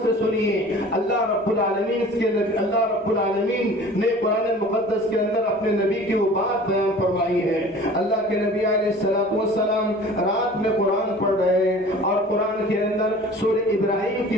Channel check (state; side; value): normal; both; correlation 0.44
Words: سے سنیے۔ اللہ رب العالمین نے قرآن مقدس کے اندر اپنے نبی کی وہ بات بیان فرمائی ہے۔ اللہ کے نبی علیہ السلام رات میں قرآن پڑھ رہے ہیں، اور قرآن کے اندر سورہ ابراہیم کی